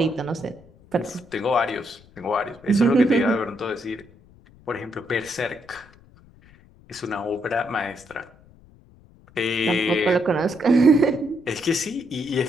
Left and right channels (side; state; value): left; noise; rumble, 26 dB below the sound